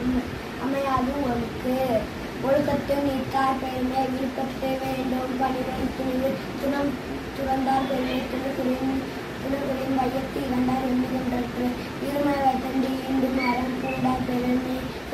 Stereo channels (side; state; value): both; identical; correlation 1.00